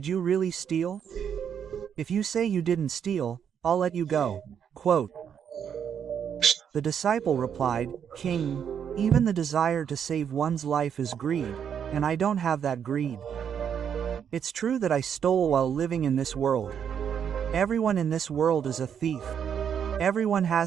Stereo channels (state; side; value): quieter; left; 8.1 dB